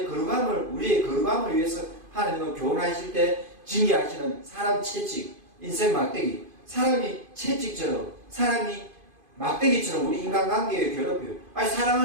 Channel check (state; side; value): late; left; 2.5 ms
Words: 거룩함을, 우리의 거룩함을 위해서 하나님은 교훈하실 때 징계하시는 사람 채찍, 인생 막대기, 사람이 채찍처럼, 사람이 막대기처럼 우리 인간관계에 괴롭혀요. 아니,